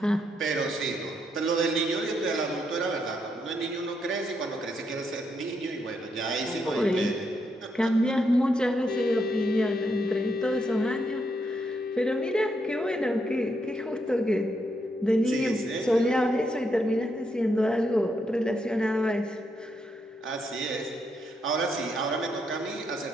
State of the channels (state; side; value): normal; both; correlation 0.79